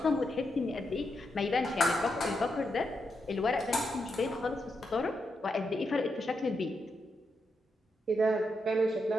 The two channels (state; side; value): normal; both; correlation 0.84